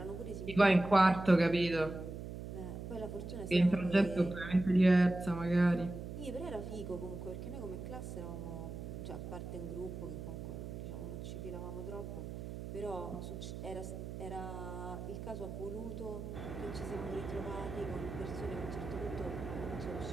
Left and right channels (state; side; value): noise; right; hum, 8 dB below the sound